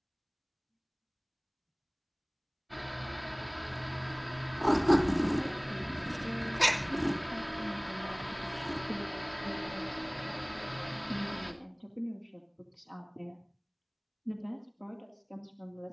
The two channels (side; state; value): both; identical; correlation 1.00